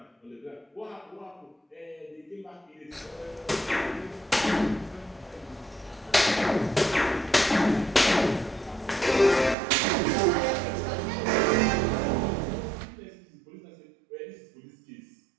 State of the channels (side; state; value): left; drops out; at 9.6 s